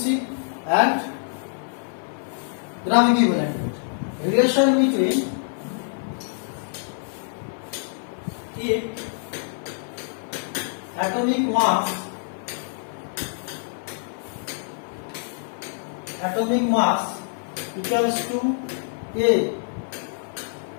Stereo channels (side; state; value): right; silent; 57 dB below the other